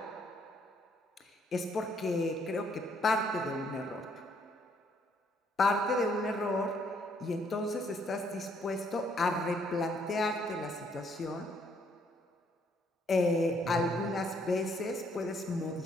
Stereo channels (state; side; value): normal; both; correlation 0.68